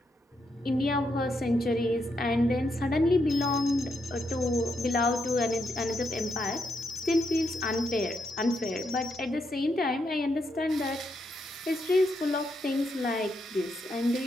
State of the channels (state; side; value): normal; both; correlation 0.80